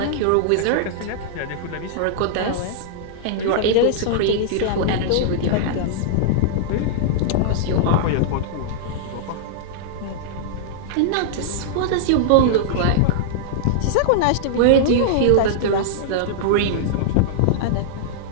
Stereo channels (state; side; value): different; both; correlation -0.02